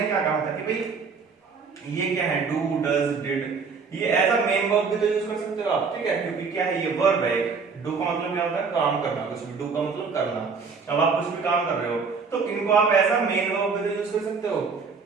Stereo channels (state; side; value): quieter; left; 5.1 dB